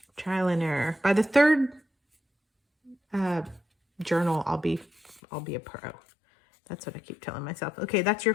trial and error. By the third journal, I'll be a pro. That's what I keep telling myself. Okay, that's your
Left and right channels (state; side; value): drops out; right; at 5.2 s